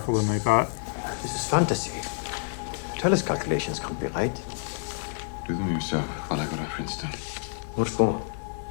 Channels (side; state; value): right; silent; digital silence